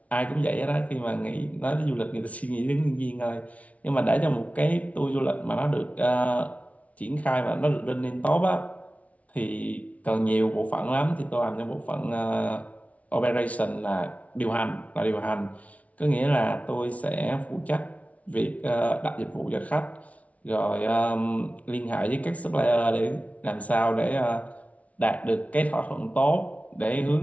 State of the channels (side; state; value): right; late; 0.067 ms